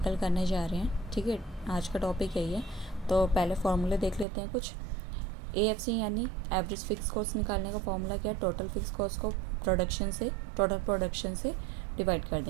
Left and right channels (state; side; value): drops out; left; at 4.2 s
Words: करने जा रहे हैं। ठीक है, आज का टॉपिक यही है। तो पहले फार्मूले देख लेते हैं कुछ। एएफसी यानी एवरेज फिक्स कॉस्ट निकालने का फार्मूला क्या है, टोटल फिक्स कॉस्ट को टोटल प्रोडक्शन से डिवाइड कर